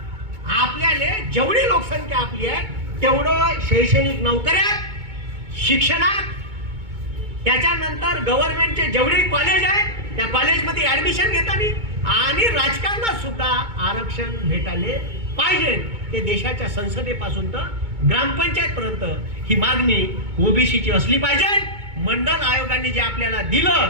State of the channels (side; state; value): left; late; 2.2 ms